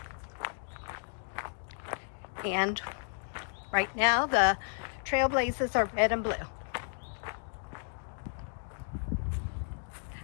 And right now the trailblazers are red and blue.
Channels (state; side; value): silent; right; 56 dB below the other